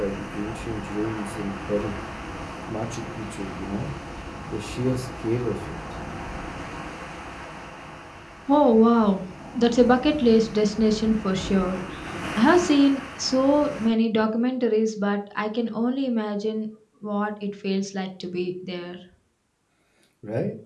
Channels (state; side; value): identical; both; correlation 1.00